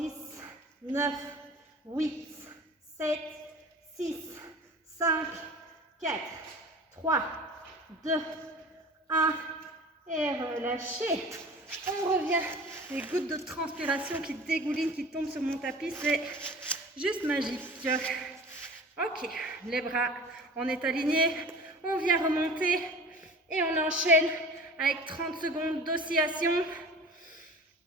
9, 8, 7, 6, 5, 4, 3, 2, 1. Et relâchez. On revient. Les gouttes de transpiration qui dégoulinent, qui tombent sur mon tapis, c'est juste magique. Ok, les bras, on est aligné. On vient remonter et on enchaîne avec 30 secondes d'oscillation.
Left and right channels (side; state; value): both; normal; correlation 0.40